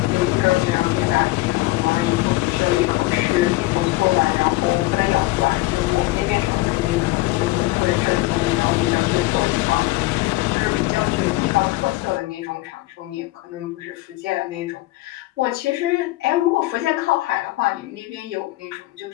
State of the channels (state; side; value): quieter; right; 18.9 dB